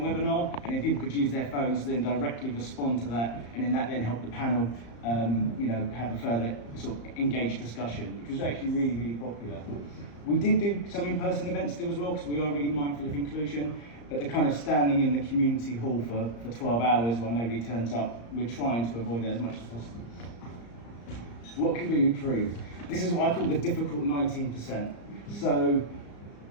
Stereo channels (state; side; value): late; right; 34 ms